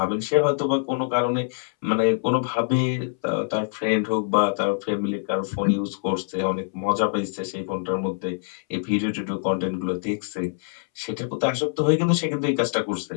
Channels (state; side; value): silent; right; 62 dB below the other